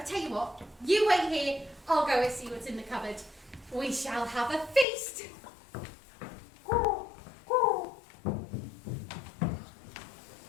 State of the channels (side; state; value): right; drops out; at 4.9 s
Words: tell you what, you wait here, I'll go and see what's in the cupboard. We shall have a feast. Oh